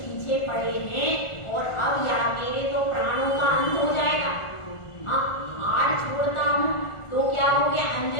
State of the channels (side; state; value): right; late; 1.4 ms